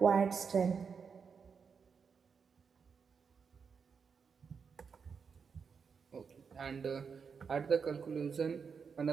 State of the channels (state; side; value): quieter; left; 6.0 dB